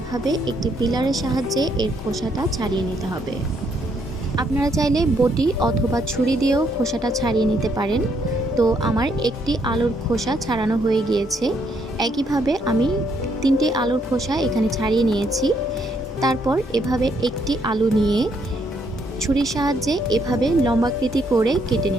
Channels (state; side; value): normal; both; correlation 0.72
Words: একটি পিলারের সাহায্যে এর খোসাটা ছাড়িয়ে নিতে হবে। আপনারা চাইলে বটি অথবা ছুরি দিয়েও খোসাটা ছাড়িয়ে নিতে পারেন। তো আমার একটি আলুর খোসা ছাড়ানো হয়ে গিয়েছে। একইভাবে আমি 3টে আলুর খোসা এখানে ছাড়িয়ে নিয়েছি। তারপর এভাবে একটি আলু নিয়ে ছুরির সাহায্যে এভাবে লম্বাকৃতি করে কেটে